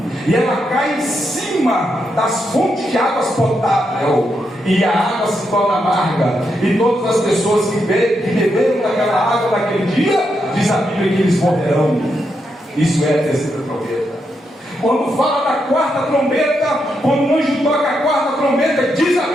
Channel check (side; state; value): both; normal; correlation 0.82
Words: e ela cai em cima das fontes de águas potáveis, e a água se torna amarga, e todas as pessoas que beberam daquela água naquele dia, diz a Bíblia que eles morrerão. Isso é a terceira trombeta. Quando fala da quarta trombeta, quando o anjo toca a quarta trombeta, diz a